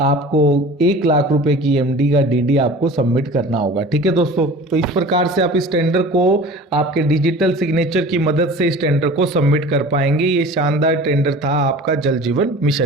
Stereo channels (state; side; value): normal; both; correlation 0.40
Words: 1 लाख रुपए की एमडी का डीडी आपको सबमिट करना होगा। ठीक है दोस्तों, तो इस प्रकार से आप इस टेंडर को आपके डिजिटल सिग्नेचर की मदद से इस टेंडर को सबमिट कर पाएंगे। ये शानदार टेंडर था आपका जल जीवन